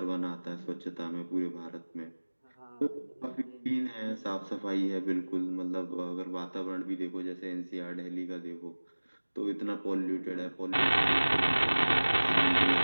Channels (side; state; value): both; inverted; correlation -1.00